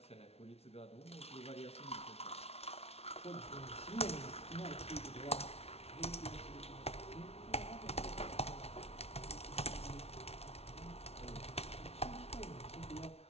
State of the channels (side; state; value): right; late; 0.30 ms